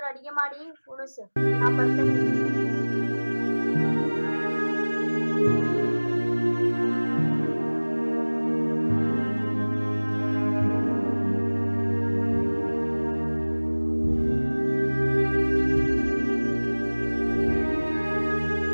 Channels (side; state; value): both; inverted; correlation -1.00